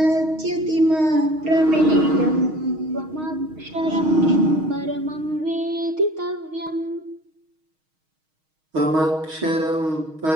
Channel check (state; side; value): late; left; 6.4 ms